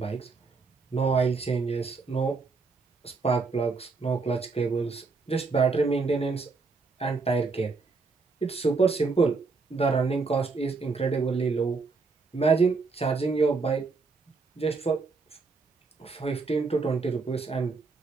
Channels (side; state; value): left; quieter; 4.3 dB